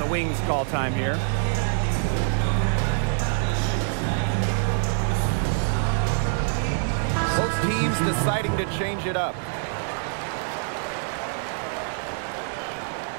the Wings call time here. Both teams deciding to change it up.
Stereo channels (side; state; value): left; silent; 62 dB below the other